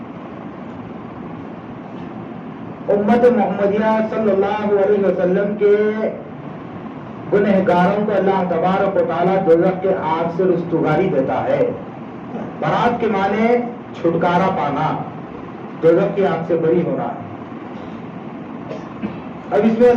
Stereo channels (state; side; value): identical; both; correlation 1.00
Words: امت محمدیہ صلی اللہ علیہ وسلم کے گنہگاروں کو اللہ تبارک و تعالیٰ دوزخ کے آگ سے رستگاری دیتا ہے. برات کے معنی چھٹکارا پانا، دوزخ کی آگ سے بری ہونا. اب اس میں